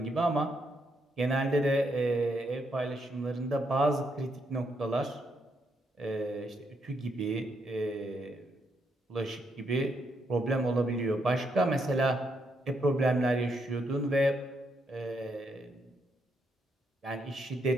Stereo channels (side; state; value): both; normal; correlation 0.77